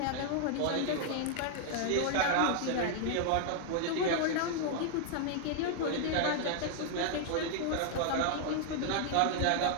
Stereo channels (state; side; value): different; both; correlation 0.00